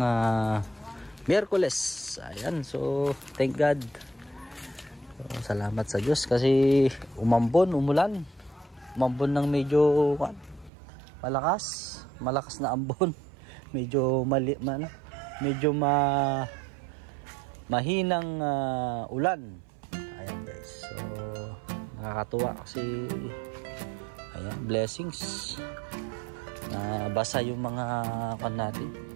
Miyerkules. Ayan, so thank God. So, salamat sa Diyos kasi umulan. Umambon ng medyo malakas na ambon. Medyo mahinang ulan. Ayan guys, so nakakatuwa kasi ayan, blessings. Basa yung mga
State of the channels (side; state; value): left; drops out; at 10.7 s